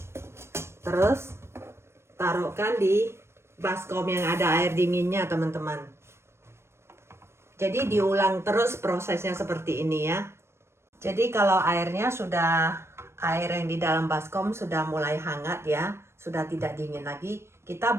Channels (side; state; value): left; late; 0.13 ms